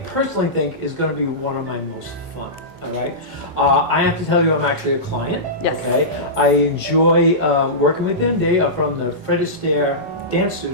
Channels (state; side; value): normal; both; correlation -0.18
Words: personally think is going to be one of my most fun. All right, I have to tell you, I'm actually a client. Yes. Okay, I enjoy working with them. They are from the Fred Astaire Dance